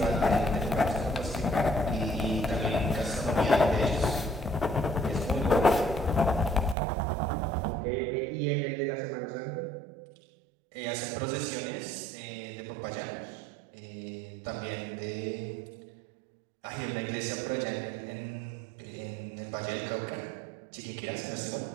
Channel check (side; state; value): left; drops out; at 6.8 s